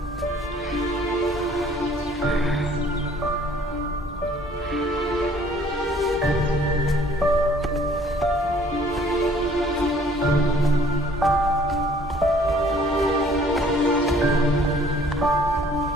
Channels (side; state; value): both; normal; correlation 0.57